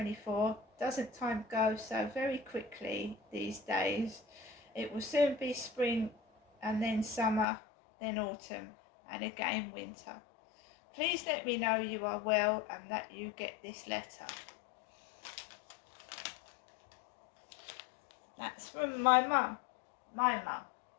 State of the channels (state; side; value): drops out; right; at 7.5 s